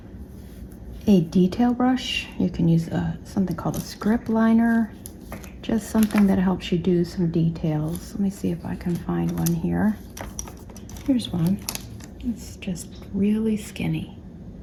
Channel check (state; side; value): identical; both; correlation 1.00